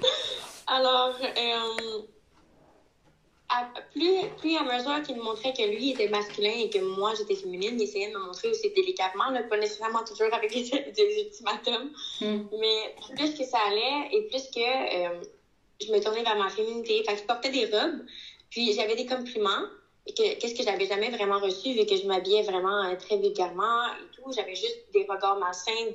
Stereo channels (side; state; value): both; identical; correlation 1.00